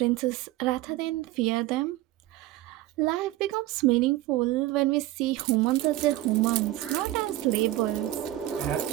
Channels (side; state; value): left; quieter; 15.9 dB